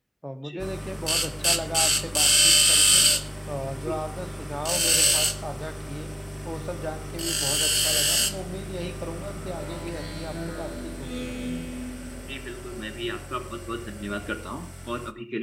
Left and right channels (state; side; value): identical; both; correlation 1.00